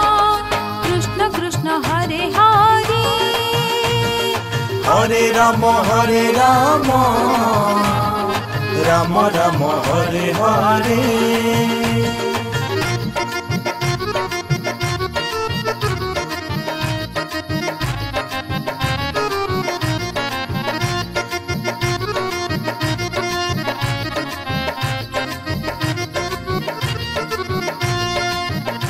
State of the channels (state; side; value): identical; both; correlation 1.00